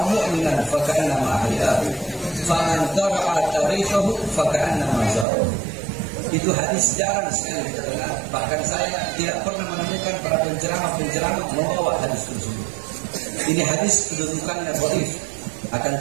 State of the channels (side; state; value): left; drops out; at 5.2 s